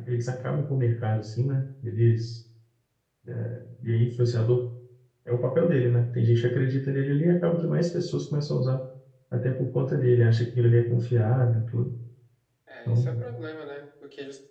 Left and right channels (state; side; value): identical; both; correlation 1.00